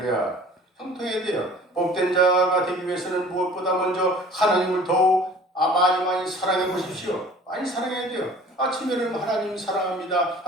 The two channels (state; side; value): normal; both; correlation 0.47